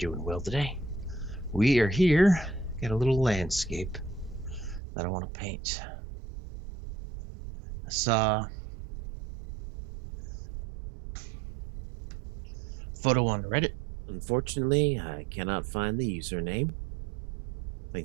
well today. We are here. Got a little landscape that I want to paint. I saw a photo on Reddit. Unfortunately, I cannot find the username. I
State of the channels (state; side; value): drops out; left; at 4.8 s